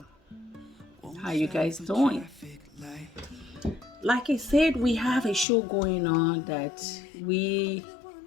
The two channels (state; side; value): drops out; right; at 5.5 s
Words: How you guys doing? Like I said, we have a show going on that we